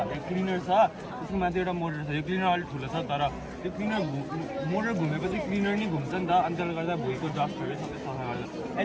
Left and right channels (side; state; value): both; identical; correlation 1.00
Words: यो क्लिनर छ त्यसको माथि एउटा मोटर छ यो क्लिनर अलिक ठुलो छ तर त्यो क्लिनर मोटर घुमेपछि क्लिनर नि घुम्छ नि त अनि त्यसले गर्दा भुइँको डस्टहरू सबै सफा गर्छ